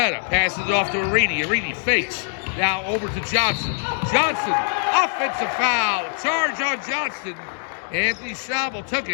passes it off to Reedy. Reedy fakes. Now over to Johnson. Johnson, offensive foul. Charge on Johnson. Anthony Schnabel took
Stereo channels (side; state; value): right; silent; digital silence